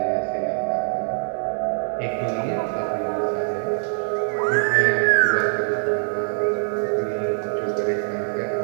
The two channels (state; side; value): silent; left; 63 dB below the other